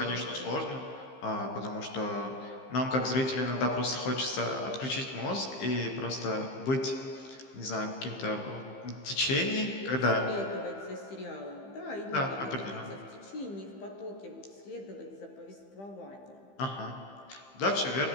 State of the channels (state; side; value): late; right; 15 ms